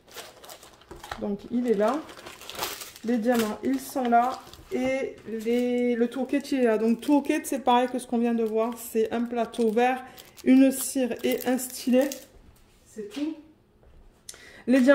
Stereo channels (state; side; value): identical; both; correlation 1.00